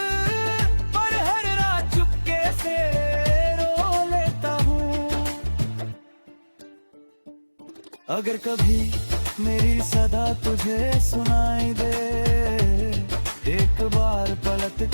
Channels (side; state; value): both; inverted; correlation -1.00